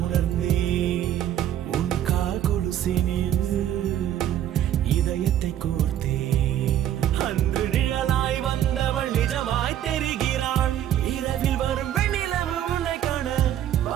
உணர்ந்தேன் உன் கால் கொலுசினில் இதயத்தை கோர்த்தேன் அன்று நிழலாய் வந்தவள் நிஜமாய் தெரிகிறாள் இரவில் வரும் வெண்ணிலவு உன்னை காண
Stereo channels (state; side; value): quieter; left; 11.2 dB